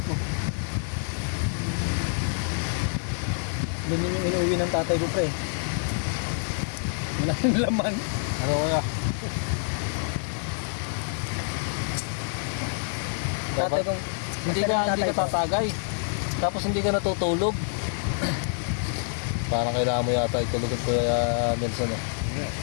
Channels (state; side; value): silent; right; digital silence